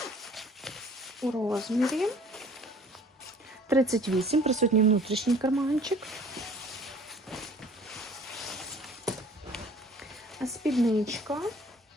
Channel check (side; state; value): both; normal; correlation 0.51